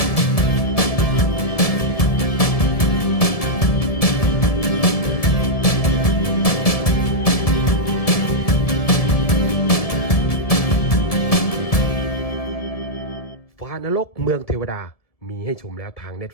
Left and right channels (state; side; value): late; right; 1.7 ms